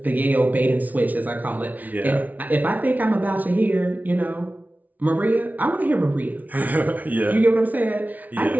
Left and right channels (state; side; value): late; left; 0.075 ms